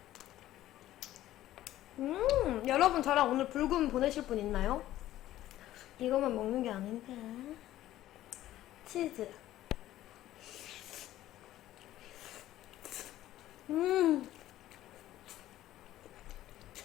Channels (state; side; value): quieter; right; 14.1 dB